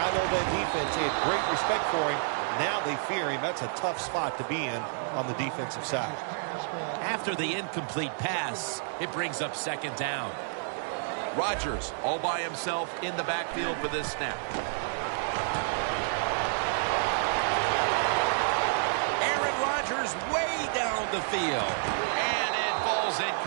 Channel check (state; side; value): silent; left; digital silence